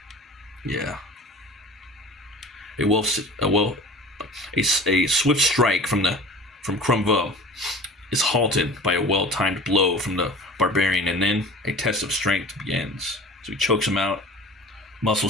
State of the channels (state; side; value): normal; both; correlation 0.40